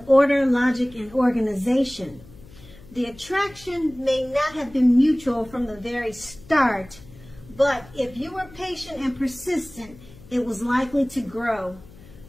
order, logic, and organization. The attraction may not have been mutual from the very start, but if you were patient and persistent, it was likely to grow.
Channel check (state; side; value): noise; left; hum, 21 dB below the sound